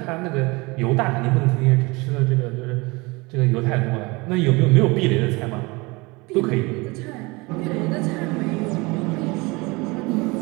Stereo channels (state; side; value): quieter; left; 24.9 dB